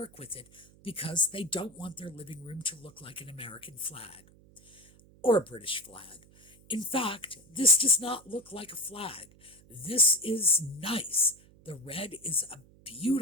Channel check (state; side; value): noise; right; hum, 26 dB below the sound